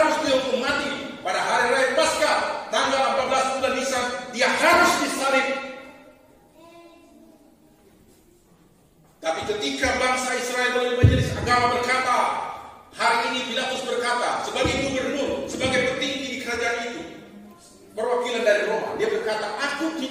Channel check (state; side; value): identical; both; correlation 1.00